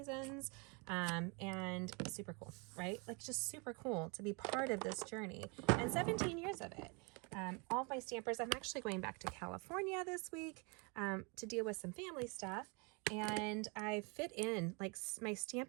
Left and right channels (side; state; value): left; quieter; 31.9 dB